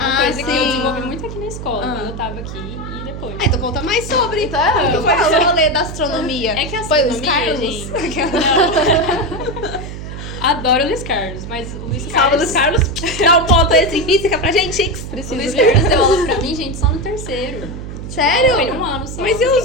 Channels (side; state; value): right; noise; hum, 9 dB below the sound